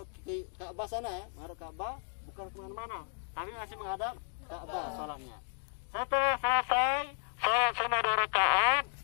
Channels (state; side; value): silent; right; 55 dB below the other